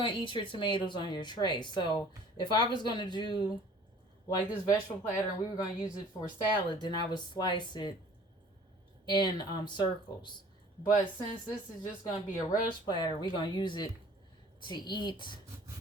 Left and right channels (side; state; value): both; normal; correlation 0.51